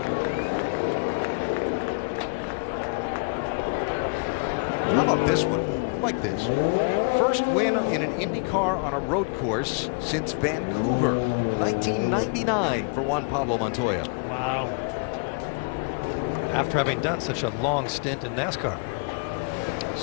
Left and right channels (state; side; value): quieter; right; 36.3 dB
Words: How about this one? I like this. First win in an IndyCar on a road course since Vancouver, 1999 for Juan Pablo Montoya. Wow. After having done such a long stint in NASCAR.